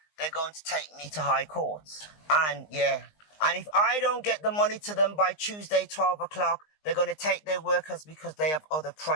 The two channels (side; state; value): right; late; 19 ms